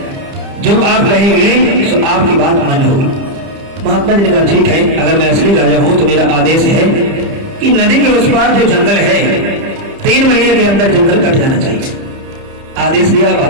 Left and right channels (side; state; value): left; late; 30 ms